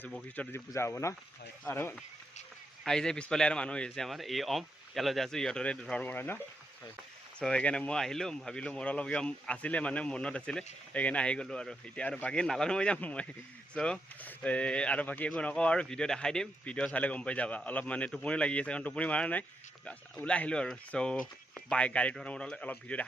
বশিষ্ঠত আজি পূজা হ'ব না আৰু আই যে পিছফালে আৰু মানুহ হৈছে আমাৰ এই ইয়ালৈ যাই আছো ইহঁতৰে ধৰ্ম হয় না so সেইকাৰণে মই আহিলো ভাবিলো মোৰ অলপ আছিলে মানে মনত আছিলে সেইকাৰণে আহি গ'লো আৰু এতিয়া আৰু বাকী নালানো মই যাম মই so আৰু বাকী একো নকওঁ আৰু ভিডিঅ' দেখাই দিম ভিডিঅ' চালে গম পাই যাবা অলপ মানে টোপনি লাগি আছে কাৰণ টোপনি মাৰা নাই ওলাই আহিলো আৰু so গাড়ীত অলপ ভিডিঅ'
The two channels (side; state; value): both; normal; correlation 0.82